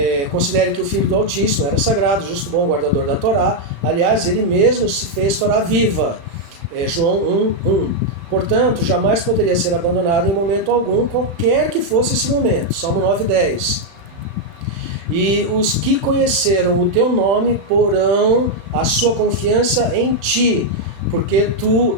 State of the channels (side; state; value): left; late; 35 ms